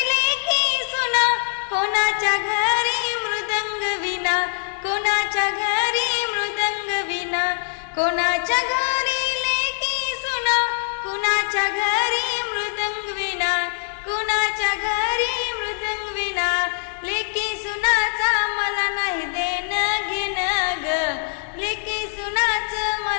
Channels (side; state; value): right; silent; digital silence